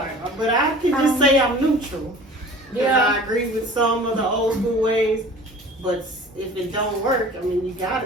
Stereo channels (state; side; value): normal; both; correlation 0.43